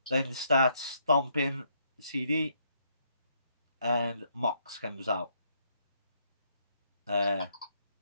Then starts stomping CD. And Mox comes out.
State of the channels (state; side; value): inverted; both; correlation -0.72